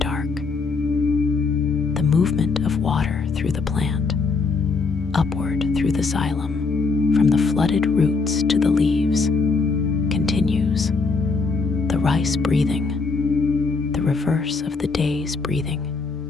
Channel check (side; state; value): right; quieter; 4.3 dB